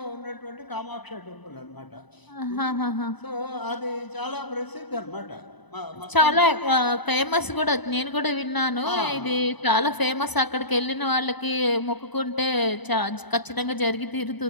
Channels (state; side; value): late; right; 0.99 ms